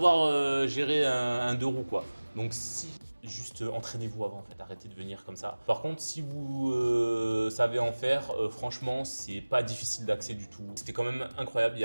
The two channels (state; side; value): inverted; both; correlation -1.00